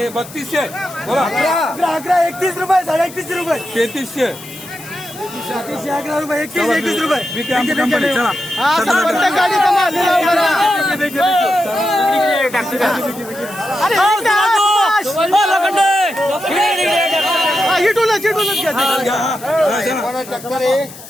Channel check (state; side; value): noise; left; hiss, 17 dB below the sound